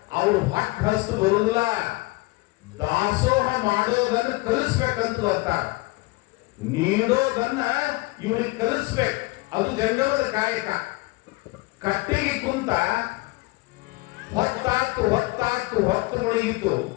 ಅವ್ರು ಹೊಟ್ಟ ಹಸ್ತು ಬರುದಿಲ್ಲ, ದಾಸೋಹ ಮಾಡೋದನ್ನ ಕಲಿಸ್ಬೇಕಂತ ಬರ್ತಾರ. ನೀಡೋದನ್ನ ಇವ್ರಿಗೆ ಕಲಿಸ್ಬೇಕು. ಅದು ಜಂಗಮದ ಕಾಯಕ. ಕಟ್ಟಿಗೆ ಕುಂತ ಹೊತ್ತು ಮುಳುಗಿತು.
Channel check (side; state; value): right; quieter; 22.9 dB